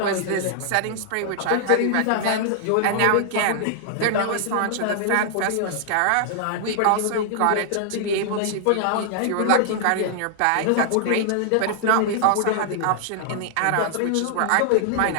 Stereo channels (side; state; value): both; different; correlation -0.01